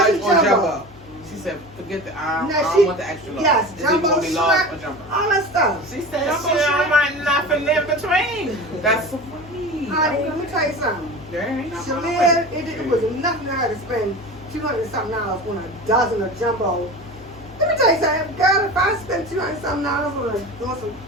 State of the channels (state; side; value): normal; both; correlation 0.32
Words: large or jumbo. She said, forget the I No, don't she- want the extra large. yes, It's either jumbo gonna be large shrimp. or jumbo. All that stuff. She said Jumbo she don't shrimp. want nothing in between. That's so funny. Honey, let me tell you something. There ain't nothing wrong Shalia, with it was nothing to her to spend $200-something on a dozen of jumbo. Let me tell you something, girl, if I spend $200-something on some